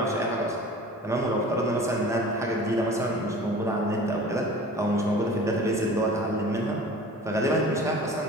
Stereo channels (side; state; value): both; normal; correlation 0.41